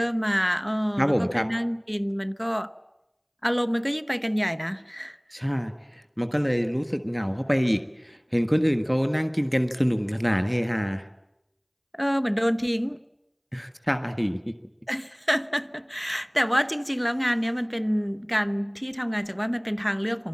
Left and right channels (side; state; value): both; identical; correlation 1.00